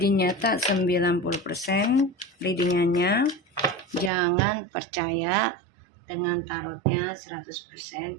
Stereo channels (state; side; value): drops out; left; at 4.1 s